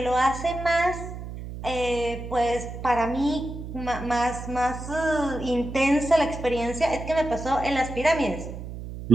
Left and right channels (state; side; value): noise; right; hum, 9 dB below the sound